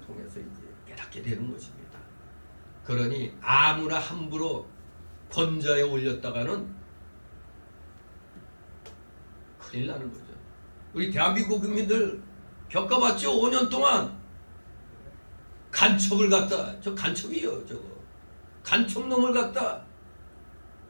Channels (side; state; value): both; inverted; correlation -1.00